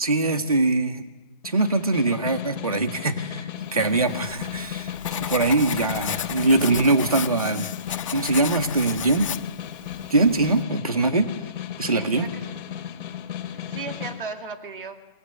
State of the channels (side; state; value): both; inverted; correlation -0.52